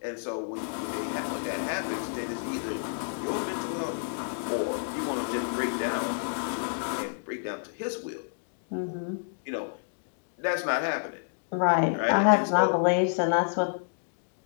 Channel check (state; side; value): silent; right; digital silence